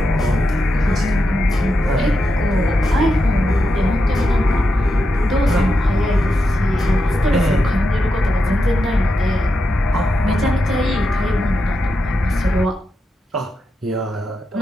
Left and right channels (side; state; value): both; normal; correlation 0.87